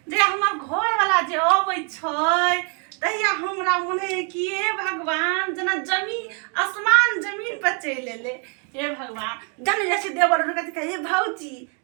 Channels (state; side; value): quieter; left; 38.3 dB